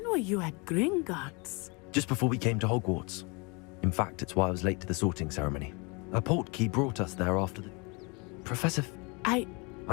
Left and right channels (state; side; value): quieter; right; 30.2 dB